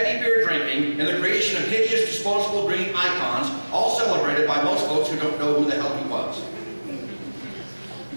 beer drinking, and the creation of hideous disposable green icons, all celebrated by most folks who don't know who the hell he was.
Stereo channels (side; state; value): both; inverted; correlation -1.00